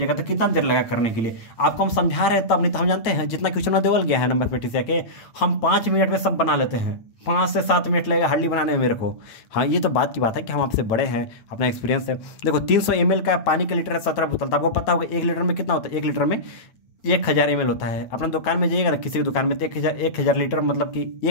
तो कितना देर लगा करने के लिए, आपको हम समझा रहे हैं तब, नहीं तो हम जानते हैं जितना क्वेश्चन देवल गया है ना मैथमेटिक्स के, हम 5 मिनट में सब बना लेते हैं, 5 से 7 मिनट लगेगा हार्डली बनाने में मेरे को। हाँ, ये तो बात की बात है कि हम आपसे बड़े हैं, अपना एक्सपीरियंस है। देखो 300 ml का पानी का लीटर है 17 बोतल, तो आपको पता होगा 1 लीटर में कितना होता है, 1 लीटर में 1000 ml होता है। अपने दुकान में जाइएगा ना, किसी भी दुकान में, तो 1000 लीटर मतलब कि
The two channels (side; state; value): right; late; 9.1 ms